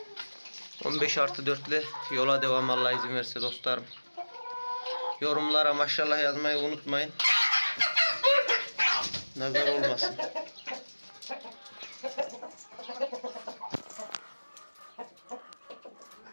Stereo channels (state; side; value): inverted; both; correlation -1.00